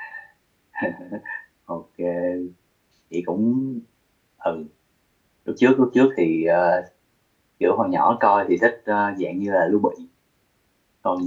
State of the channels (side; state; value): both; identical; correlation 1.00